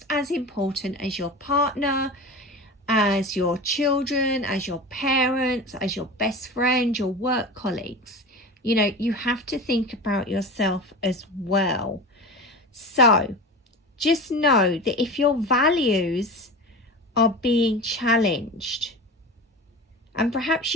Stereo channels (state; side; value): normal; both; correlation 0.30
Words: as important as your partner, as your children, as your parents, as your best friend, your work colleagues. You know, you have to think about yourself as well. So just know that if your values are being challenged, and perhaps